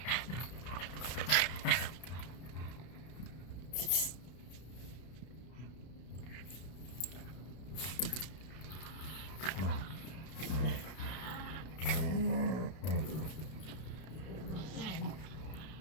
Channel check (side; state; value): right; late; 32 ms